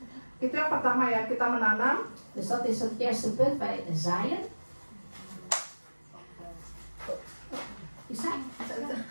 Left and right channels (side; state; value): both; inverted; correlation -1.00